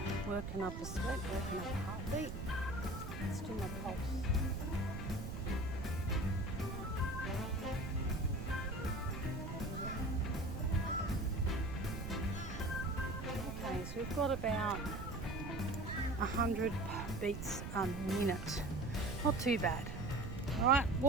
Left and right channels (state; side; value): noise; right; rumble, 7 dB below the sound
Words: working up a sweat, working up a heartbeat. Let's do my pulse. Okay, so we've got about 100 beats a minute. Not too bad. All right,